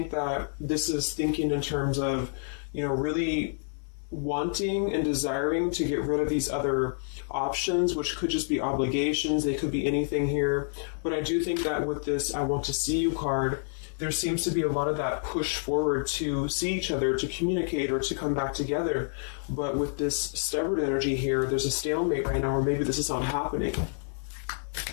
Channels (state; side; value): silent; right; 59 dB below the other